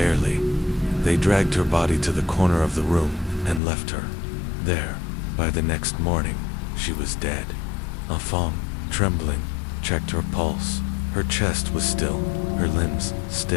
They dragged her body to the corner of the room and left her there. By the next morning, she was dead. Fong, trembling, checked her pulse. Her chest was still, her limbs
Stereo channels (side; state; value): right; drops out; at 3.6 s